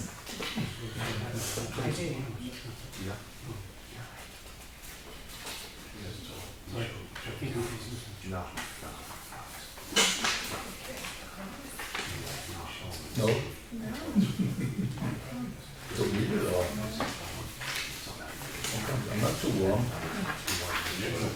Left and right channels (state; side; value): identical; both; correlation 1.00